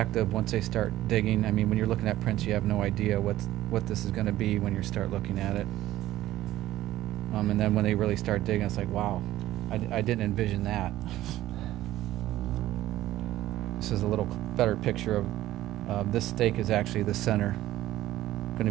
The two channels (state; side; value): quieter; left; 14.8 dB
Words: once they start digging. I mean, when you're looking at prints, you have no idea what this is going to be when you start looking at it. And then when they really start digging, it's like, wow, I didn't envision that. This is a little better picture of this stake is actually the center, going to